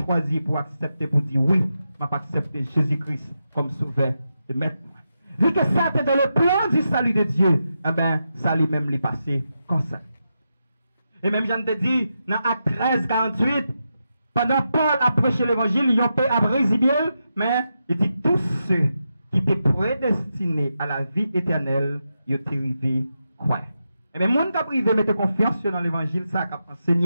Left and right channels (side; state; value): both; inverted; correlation -0.87